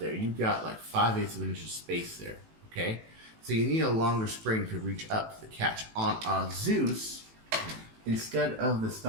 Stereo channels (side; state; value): left; late; 18 ms